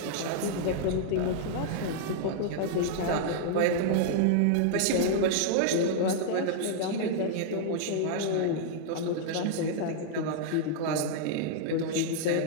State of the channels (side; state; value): both; different; correlation -0.01